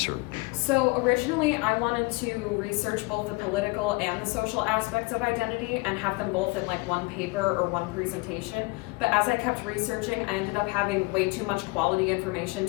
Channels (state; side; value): quieter; right; 26.4 dB